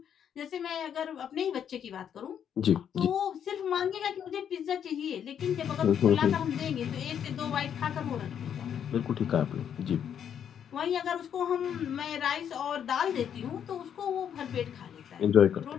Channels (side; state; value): right; quieter; 8.7 dB